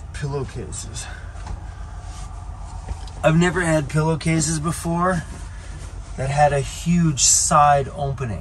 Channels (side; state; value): both; identical; correlation 1.00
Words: pillowcases. I've never had pillowcases before that had a huge side